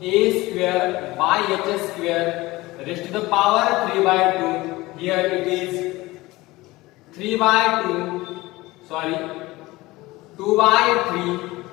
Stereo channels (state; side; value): quieter; right; 20.0 dB